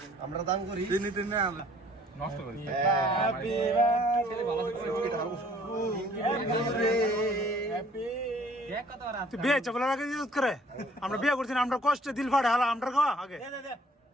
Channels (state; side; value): normal; both; correlation 0.57